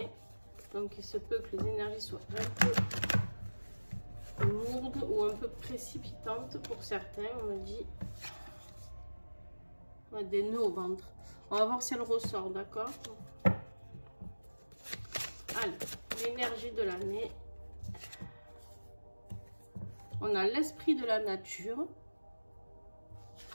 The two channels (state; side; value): inverted; both; correlation -1.00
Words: Donc, il se peut que les énergies soient un peu lourdes ou un peu précipitantes pour certains. On me dit des nœuds au ventre. On va voir si elle ressort, d'accord? Allez, l'énergie de l'année. On a l'esprit de la nature